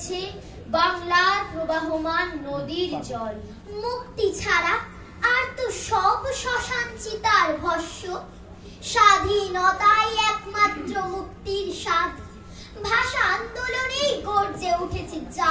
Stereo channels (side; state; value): both; identical; correlation 1.00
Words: বাংলার প্রবাহমান নদীর জল। মুক্তি ছাড়া আর তো সব শ্মশান চিতার ভস্য, স্বাধীনতাই একমাত্র মুক্তির স্বাদ। ভাষা আন্দোলনেই গর্জে উঠেছে